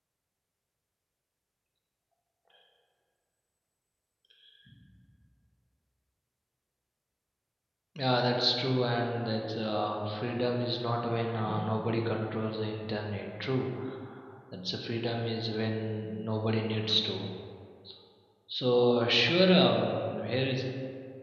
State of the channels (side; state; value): both; identical; correlation 1.00